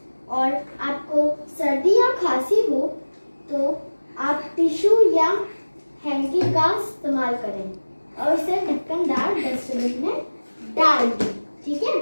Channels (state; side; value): inverted; both; correlation -1.00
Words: और आपको सर्दी या खांसी हो तो आप टिश्यू या हैंकी का इस्तेमाल करें और उसे ढक्कनदार डस्टबिन में डाल दें, ठीक है?